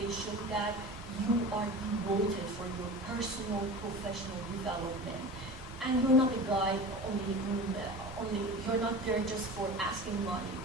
show that you are devoted for your personal, professional development. And you're not a guide only you're not there just for asking money,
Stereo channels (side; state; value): both; normal; correlation 0.34